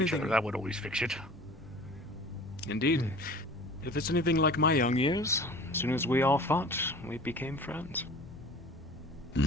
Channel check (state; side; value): normal; both; correlation 0.42